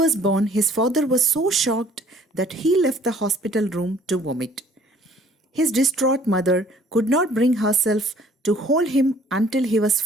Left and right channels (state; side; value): normal; both; correlation 0.57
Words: born, his father was so shocked that he left the hospital room to vomit. His distraught mother could not bring herself to hold him until he was